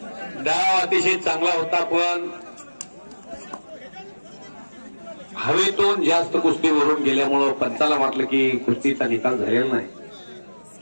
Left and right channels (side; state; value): both; inverted; correlation -1.00